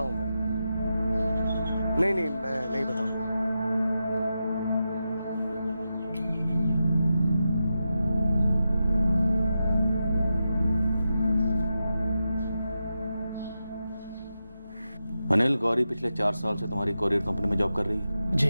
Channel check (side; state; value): both; inverted; correlation -0.89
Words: हूँ मैं। नहीं मैं नहीं बताऊंगा। अनिल, गौरी पिछले 4 साल से तुम्हारी कोरियर कंपनी में जॉब कर रही है?